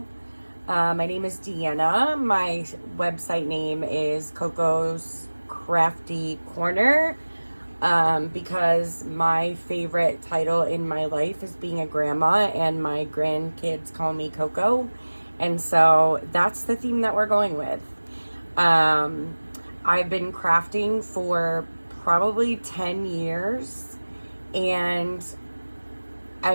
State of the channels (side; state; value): both; inverted; correlation -1.00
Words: My name is Deanna. My website name is Coco'sCraftyCorner, because my favorite title in my life is being a grandma, and my grandkids call me Coco. And so that's the theme that we're going with. I've been crafting for probably 10 years, and